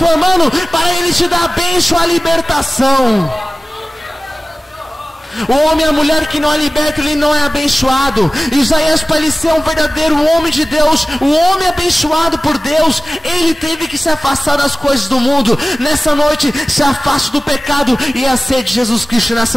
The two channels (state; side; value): normal; both; correlation 0.97